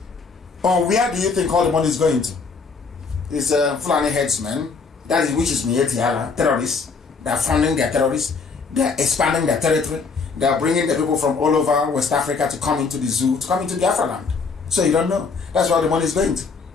or where do you think all the money is going to? It's Fulani headsmen, that is, which is Mietiala, terrorists. They are funding their terrorists. They are expanding their territory. They are bringing the people from all over West Africa to come into the zoo, to come into Biafra land. So you don't know. That's where the money is going to.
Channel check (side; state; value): right; quieter; 4.8 dB